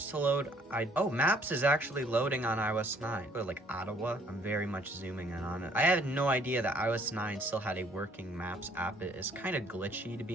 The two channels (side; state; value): both; normal; correlation 0.62